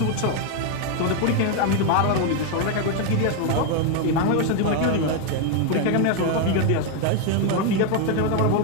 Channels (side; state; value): both; different; correlation 0.01